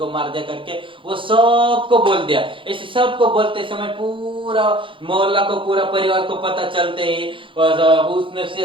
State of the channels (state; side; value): late; left; 0.25 ms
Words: मार दिया करके वो सबको बोल दिया। ऐसे सबको बोलते समय पूरा मोहल्ला को, पूरा परिवार को पता चलते ही उसने